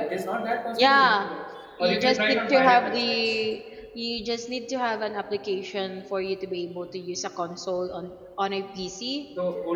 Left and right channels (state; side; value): identical; both; correlation 1.00